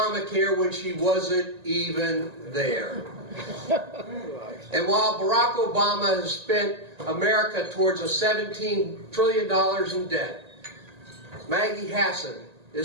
when she wasn't even there. And while Barack Obama has spent America towards a $17 trillion in debt, Maggie Hassan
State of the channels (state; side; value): late; left; 1.8 ms